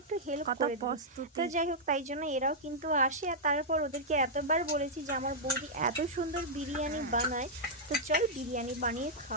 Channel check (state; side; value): normal; both; correlation -0.07